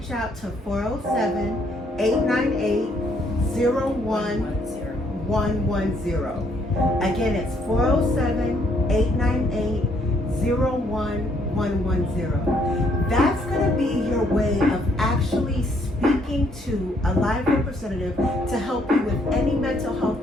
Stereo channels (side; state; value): both; normal; correlation 0.68